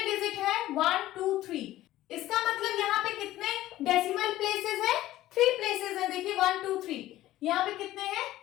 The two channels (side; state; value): right; quieter; 15.1 dB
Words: डिजिट है? 1 2 3, इसका मतलब यहाँ पे कितने डेसिमल प्लेसेस है? 3 प्लेसेस है। देखिए 1 2 3, यहाँ पे कितने हैं?